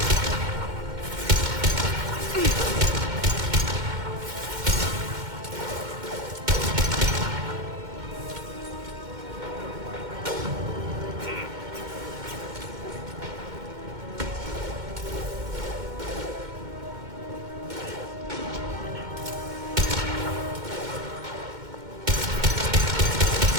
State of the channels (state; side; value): late; left; 2.1 ms